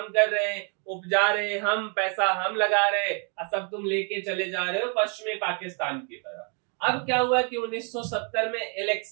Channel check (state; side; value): quieter; left; 38.2 dB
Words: कर रहे हैं, उपजा रहे हैं हम, पैसा हम लगा रहे हैं, और सब तुम लेके चले जा रहे हो पश्चिमी पाकिस्तान की तरह। अब क्या हुआ कि 1970 में